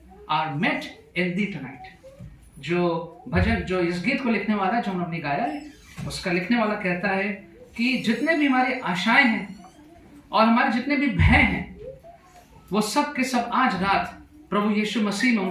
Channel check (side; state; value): both; identical; correlation 1.00